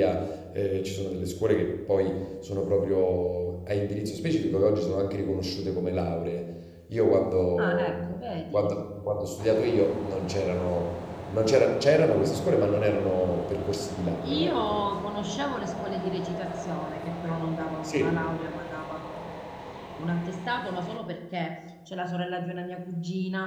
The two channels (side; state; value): both; identical; correlation 1.00